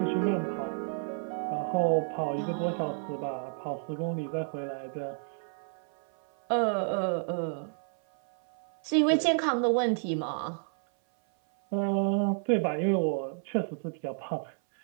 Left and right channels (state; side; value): silent; left; 57 dB below the other